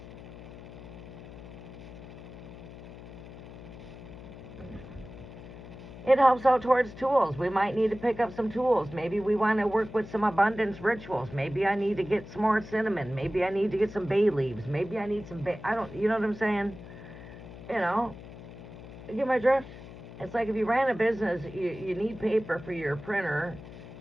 It helps out towards tools. We might need to pick up some tools. Maybe we want to work with some abundance rituals. Maybe I need to get some more cinnamon. Maybe I need to get some bay leaves. Maybe I need some you know what I'm saying? You get my drift? It's like if you ran a business, you need paper for your printer.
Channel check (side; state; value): left; noise; hum, 15 dB below the sound